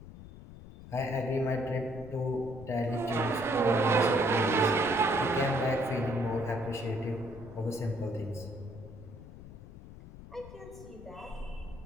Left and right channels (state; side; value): noise; left; rumble, 16 dB below the sound